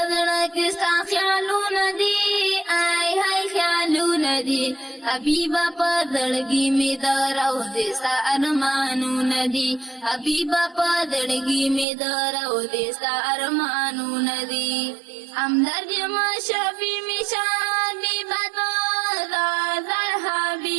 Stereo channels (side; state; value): left; drops out; at 11.9 s